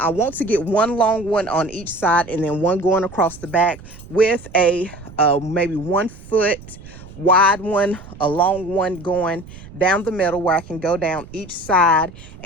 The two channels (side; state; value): right; noise; rumble, 18 dB below the sound